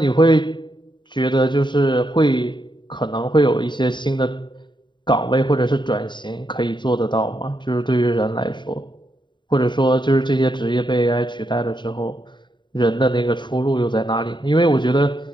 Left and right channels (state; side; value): late; right; 0.23 ms